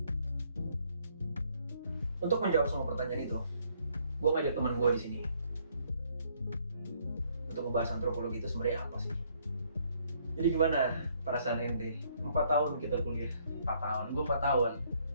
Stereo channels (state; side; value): inverted; both; correlation -0.67